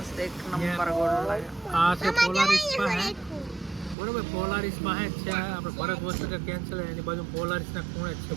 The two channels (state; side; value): drops out; left; at 4.0 s